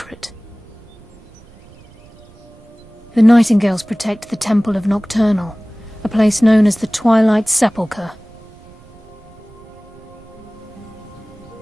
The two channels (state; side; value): noise; right; rumble, 24 dB below the sound